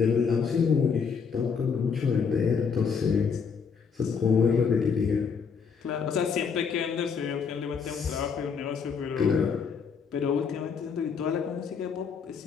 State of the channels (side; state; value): right; quieter; 6.1 dB